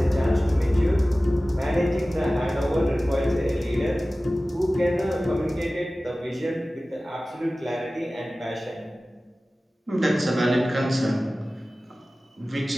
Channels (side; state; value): both; normal; correlation 0.97